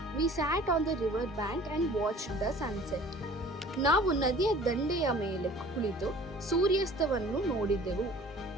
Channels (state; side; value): normal; both; correlation 0.48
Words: We sat on the river bank and watch the sunset. ನಾವು ನದಿಯ ದಂಡೆಯ ಮೇಲೆ ಕುಳಿತು ಸೂರ್ಯಾಸ್ತವನ್ನು ನೋಡಿದೆವು.